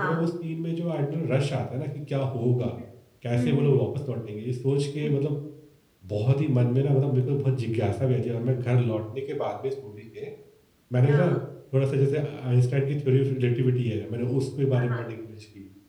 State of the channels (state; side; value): identical; both; correlation 1.00